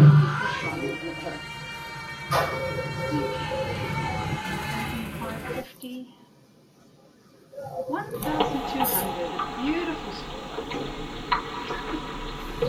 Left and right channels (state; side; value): identical; both; correlation 1.00